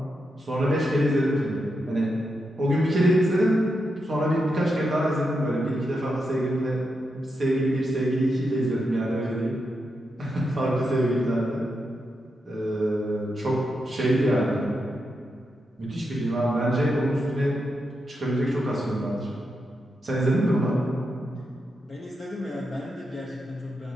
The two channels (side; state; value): both; normal; correlation 0.85